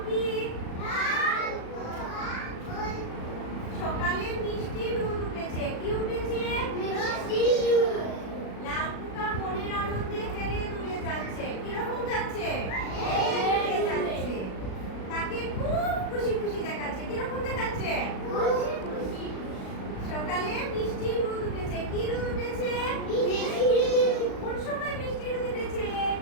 কি? সকালে মিষ্টি রোদ উঠেছে। কি উঠেছে? লাল পোকা মনের আনন্দে হেলে দুলে যাচ্ছে। কিরকম যাচ্ছে? হেলে যাচ্ছে। তাকে খুব খুশি খুশি দেখাচ্ছে। কিরকম দেখাচ্ছে? সকালে মিষ্টি রোদ উঠেছে। কি রোদ উঠেছে? কোন সময় মিষ্টি রোদ উঠেছে?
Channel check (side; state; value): right; late; 36 ms